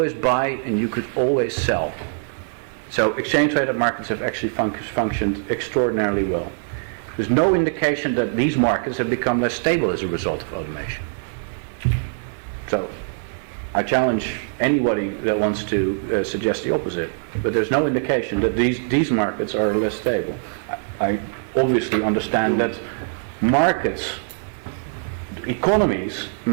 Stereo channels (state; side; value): silent; left; digital silence